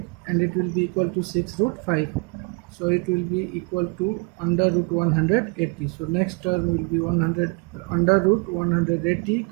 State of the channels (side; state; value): left; quieter; 33.4 dB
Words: and it will be equal to 6 root 5, so it will be equal to under root 180. So next term will be 100 under root 180.